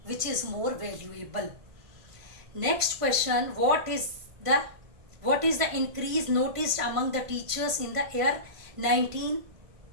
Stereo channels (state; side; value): late; left; 1.6 ms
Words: which is more valuable. Next question, what is the increase noticed among the teachers in the year